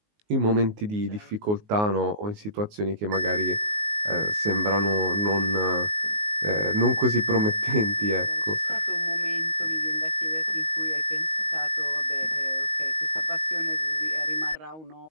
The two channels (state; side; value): late; left; 19 ms